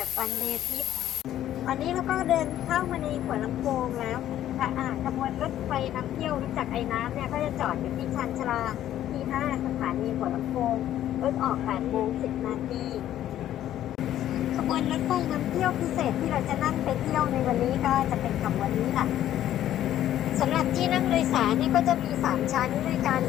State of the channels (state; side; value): quieter; right; 12.1 dB